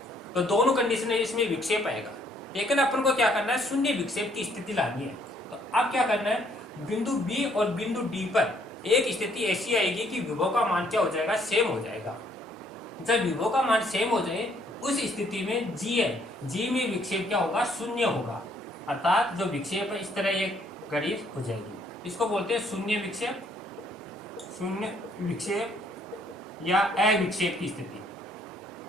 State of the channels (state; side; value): normal; both; correlation 0.66